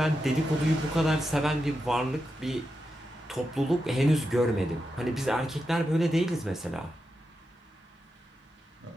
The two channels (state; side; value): normal; both; correlation 0.88